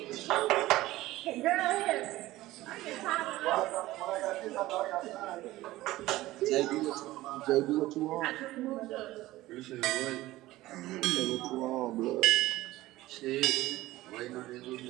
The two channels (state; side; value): quieter; left; 17.1 dB